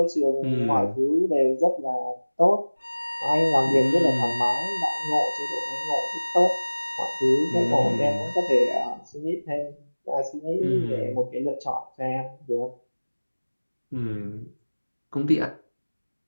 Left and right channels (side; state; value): both; inverted; correlation -1.00